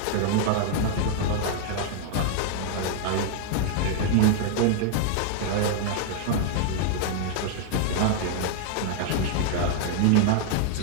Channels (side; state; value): both; different; correlation 0.00